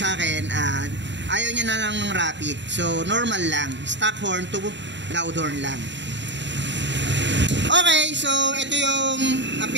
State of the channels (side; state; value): left; late; 0.52 ms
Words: akin, ayaw niya na lang ng rapid. So, normal lang. Stock horn to loud horn lang. Okay, so ito yung